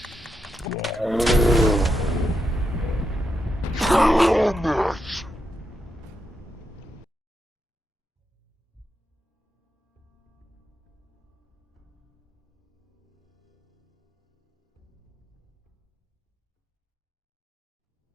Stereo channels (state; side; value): normal; both; correlation 0.83